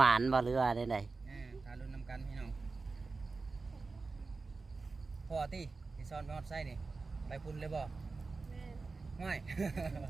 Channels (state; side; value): quieter; left; 4.0 dB